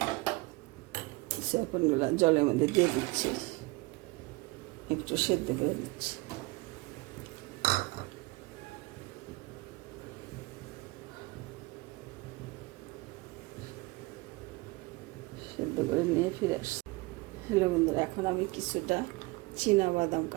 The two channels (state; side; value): quieter; left; 23.9 dB